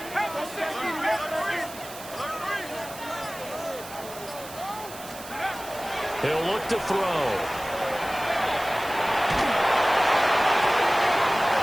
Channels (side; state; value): right; noise; hiss, 15 dB below the sound